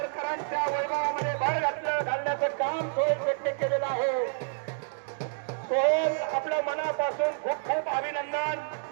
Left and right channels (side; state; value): left; silent; digital silence